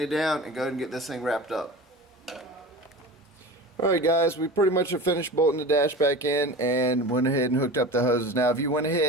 it down, and go ahead and get this thing wrapped up. Alright guys, we pretty much have finished bolting the dash back in and went ahead and hooked up the hoses. Now if you went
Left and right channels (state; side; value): normal; both; correlation 0.33